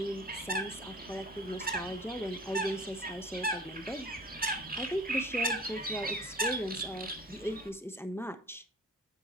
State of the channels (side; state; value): both; normal; correlation 0.42